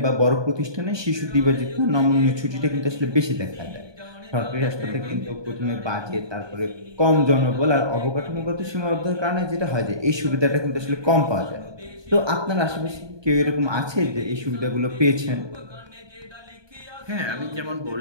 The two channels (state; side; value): late; left; 1.2 ms